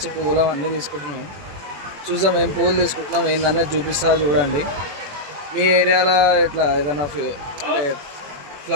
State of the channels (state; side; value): late; left; 21 ms